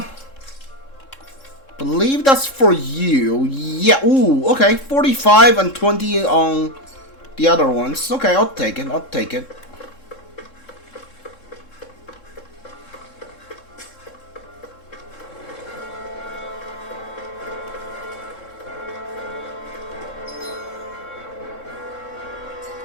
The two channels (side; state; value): right; late; 3.7 ms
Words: Believe that's for you. Yeah. Ooh. Okay. 45 and 20 on the other ones. Okay, I'll take it. I'll take it.